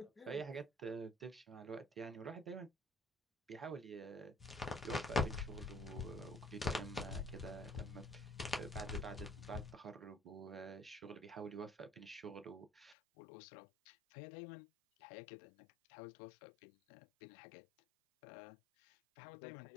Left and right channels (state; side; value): drops out; right; at 13.0 s